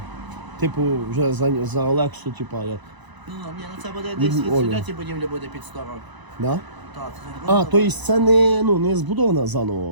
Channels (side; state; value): left; late; 1.0 ms